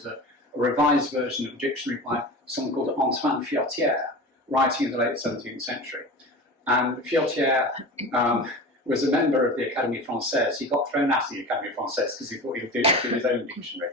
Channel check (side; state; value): both; normal; correlation 0.32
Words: a revised version of a dictionary by someone called Antoine Furetière, writing in the late 17th century. And Furetière was a member of the Académie Française. He got thrown out of the Académie Française because he thought he would do his own dictionary.